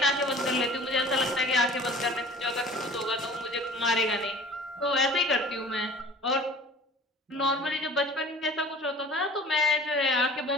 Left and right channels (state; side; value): normal; both; correlation 0.46